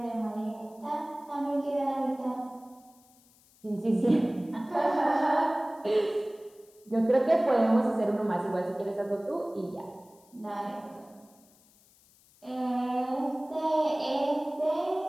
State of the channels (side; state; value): left; noise; hiss, 29 dB below the sound